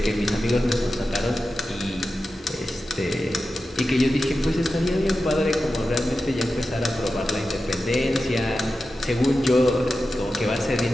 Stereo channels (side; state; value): both; normal; correlation 0.92